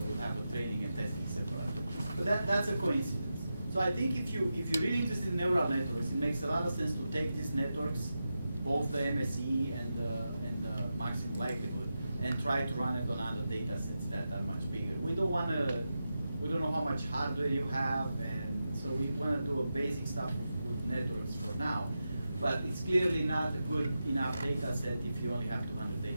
would have a training and testing separately. But that's a coincidence. So I think if you're really interested in neural networks, it makes a lot of sense to take these networks, both the MSE and the maximum likelihood, and try to run it on other data sets that are much bigger. We don't know how much hardware you have, and so we want to do a basic stuff with networks for now. But it's clearly not a good enough data set if you only have 200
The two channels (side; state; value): both; inverted; correlation -0.90